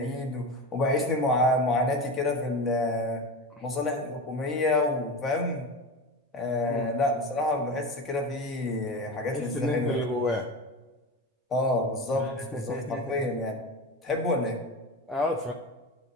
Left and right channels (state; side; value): normal; both; correlation 0.25